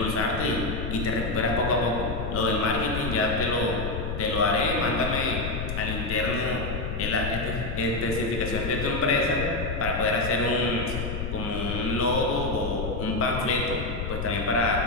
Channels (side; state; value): left; noise; rumble, 4 dB below the sound